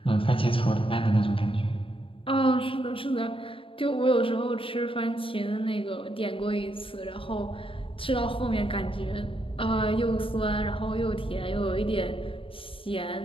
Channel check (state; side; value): late; right; 0.26 ms